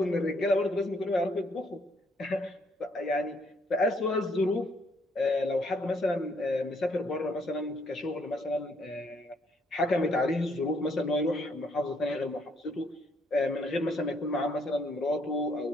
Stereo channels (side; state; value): both; normal; correlation 0.69